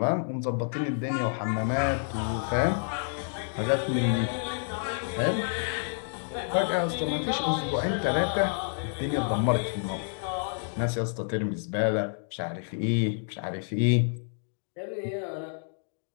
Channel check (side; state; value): right; silent; digital silence